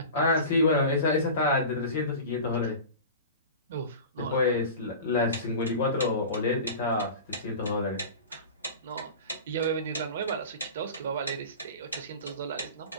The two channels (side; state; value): both; inverted; correlation -0.34